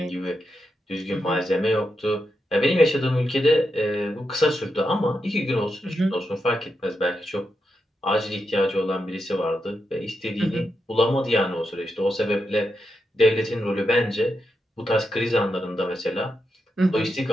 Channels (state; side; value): normal; both; correlation 0.85